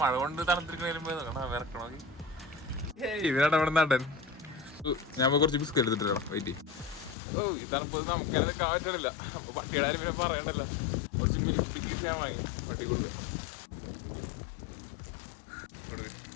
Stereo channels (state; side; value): drops out; right; at 7.2 s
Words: കൊണ്ട് തണുത്തിരിക്കണ വിറക്കണോ? ഇവനാണ് അവിടെ നടൻ. ഞാൻ കുറച്ച് ബിസ്ക്കറ്റ് എടുത്തിട്ടാണ്. വെയിറ്റ്. ഈ തണുപ്പ് നമുക്കത് നിൽക്കാൻ പറ്റില്ല. അപ്പൊ പട്ടിയുടെ ആരും പിന്നെ പറയണ്ടല്ലോ. കുറച്ച് മിൽക്ക് ഞാൻ വാങ്ങി പട്ടി കൊടുക്കുക.